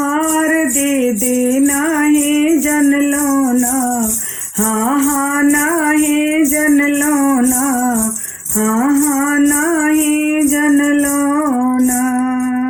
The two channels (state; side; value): identical; both; correlation 1.00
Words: दीदी नाही जनलो ना, हाँ हाँ नाही जनलो ना, हाँ हाँ नाही जनलो ना।